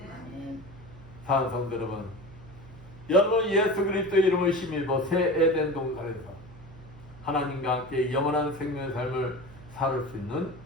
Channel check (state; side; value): noise; right; hum, 19 dB below the sound